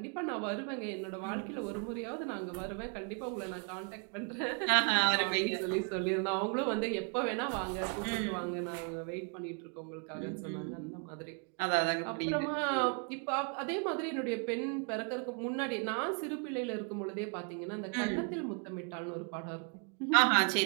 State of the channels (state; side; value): quieter; left; 39.0 dB